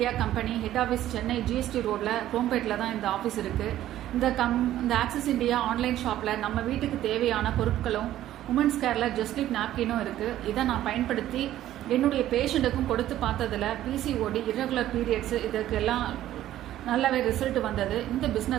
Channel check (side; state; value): left; quieter; 13.1 dB